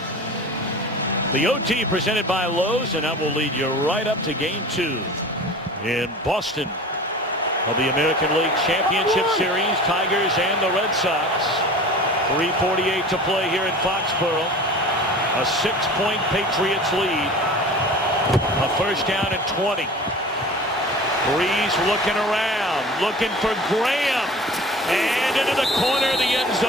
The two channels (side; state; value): both; normal; correlation 0.39